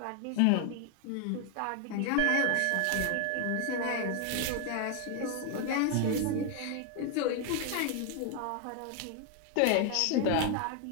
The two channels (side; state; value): both; different; correlation 0.00